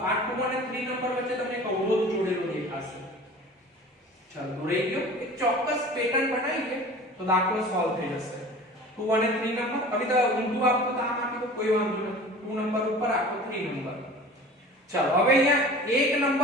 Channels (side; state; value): both; normal; correlation 0.40